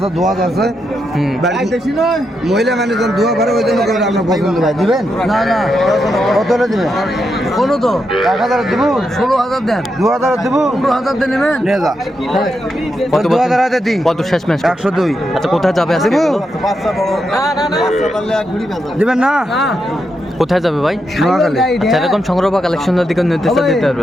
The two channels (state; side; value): normal; both; correlation 0.84